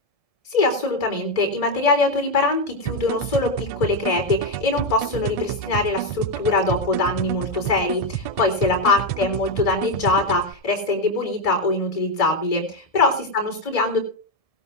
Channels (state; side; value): late; right; 1.7 ms